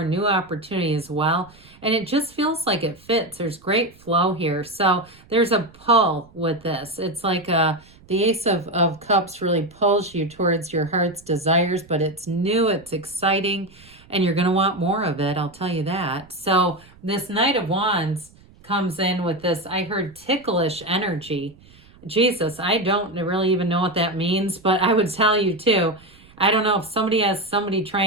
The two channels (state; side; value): noise; right; rumble, 26 dB below the sound